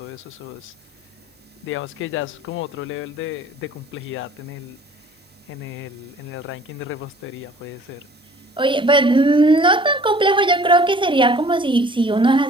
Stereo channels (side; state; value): both; normal; correlation 0.52